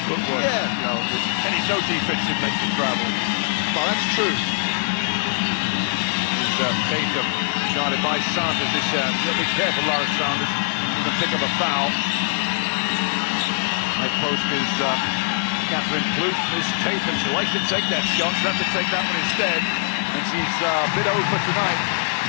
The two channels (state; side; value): silent; right; digital silence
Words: footwork. Yeah. You know, no defense should make you travel. Oh, that's true. Tatum guarded by Sanders this year. Be careful, Lara Sanders. To pick up a foul. High post is Catherine Plouffe. Miss Tatum. She likes to take that shot. She'll have to take that one instead. And she's a bit over tonight.